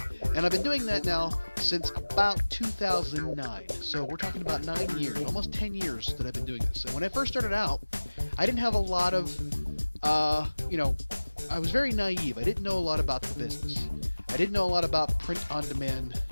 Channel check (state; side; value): inverted; both; correlation -1.00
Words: And I've been doing that now since about 2009. So we're talking about 9 years, almost 10 years that I've been doing this. And when I first started out, I didn't have a lot of, I was very naive. I didn't know a lot about the business. I didn't know a lot about print-on-demand